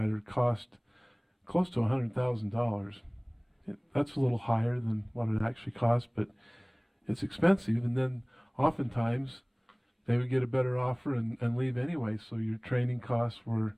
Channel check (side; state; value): both; identical; correlation 1.00